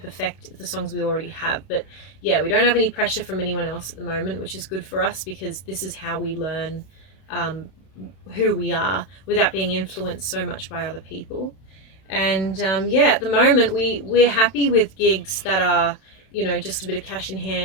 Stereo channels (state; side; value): late; right; 32 ms